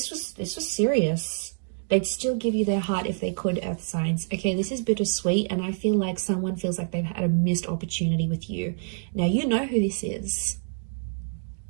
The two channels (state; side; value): silent; left; digital silence